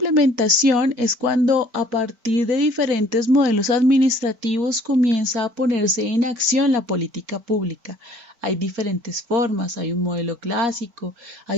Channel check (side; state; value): left; late; 4.5 ms